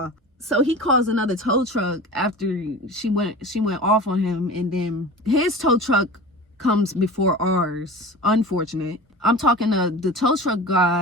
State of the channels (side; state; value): both; normal; correlation 0.34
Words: So he calls another tow truck after she went off on him, and then his tow truck comes before ours. Unfortunate. I'm talking to the tow truck